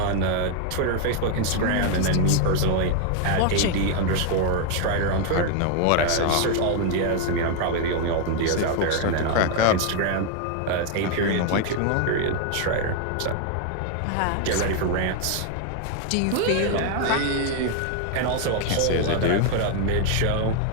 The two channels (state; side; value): different; both; correlation 0.00